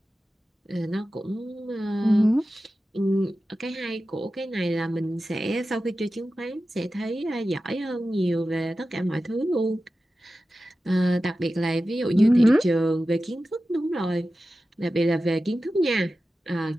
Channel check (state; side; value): normal; both; correlation 0.94